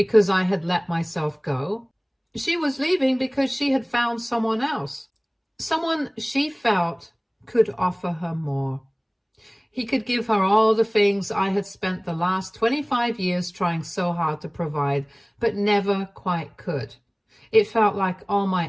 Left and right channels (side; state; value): both; identical; correlation 1.00